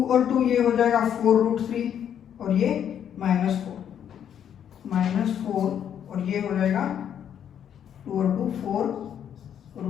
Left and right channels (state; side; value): quieter; right; 9.2 dB